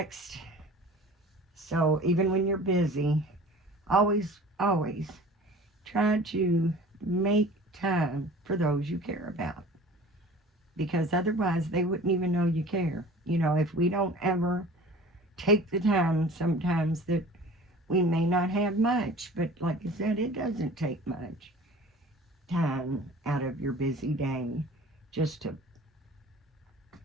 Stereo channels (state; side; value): normal; both; correlation 0.43